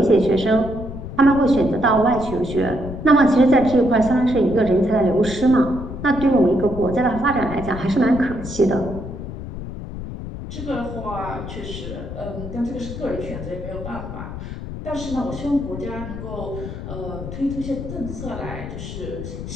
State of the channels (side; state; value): left; noise; rumble, 9 dB below the sound